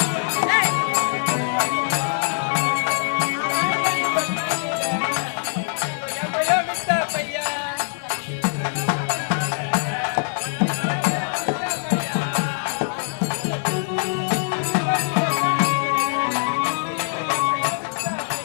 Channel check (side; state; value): right; silent; 64 dB below the other